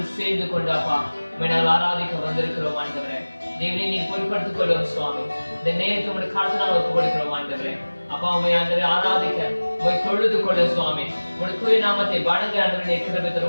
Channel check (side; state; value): both; inverted; correlation -1.00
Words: சேர்ந்து கொண்டு அப்பா நாங்கள் ஆராதிக்க வந்திருக்கிறோம். ஆண்டவரே, தேவனை நீ பொறுப்படுத்திக் கொள்ளும் சுவாமி. இந்த நேரத்தை உடைய காலத்தினால் ஒப்புக் கொடுக்கிறோம். ஆண்டவரே, அப்பா உண்மை ஆண்டவரை ஆராதிக்க உண்மை தொழுது கொள்ள சுவாமி. உடைய தூய நாமத்தை வணங்க ஆண்டவரை கிருபை